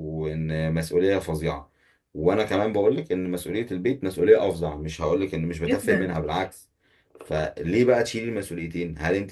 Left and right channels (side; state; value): both; identical; correlation 1.00